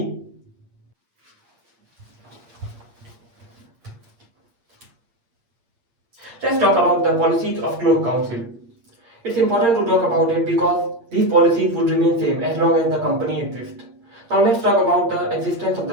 Let's talk about the policies of Cloth Council. It's important to talk about it because these policies would remain same as long as the company exists. Now let's talk about the existence of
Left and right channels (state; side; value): late; left; 8.6 ms